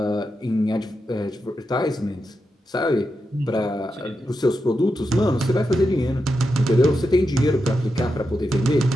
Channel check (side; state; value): both; normal; correlation 0.87